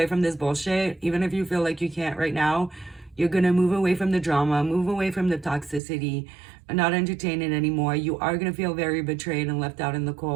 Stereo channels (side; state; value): left; drops out; at 5.8 s